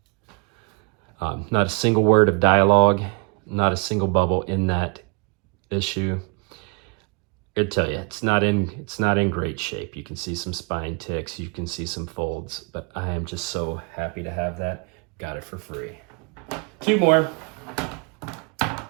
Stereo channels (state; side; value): quieter; left; 34.3 dB